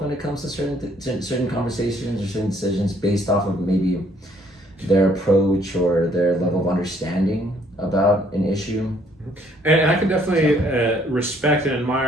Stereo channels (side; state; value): both; normal; correlation 0.64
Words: when it comes to certain conversations or certain decisions based off of maybe their approach or their level of understanding about an issue. And I can definitely respect and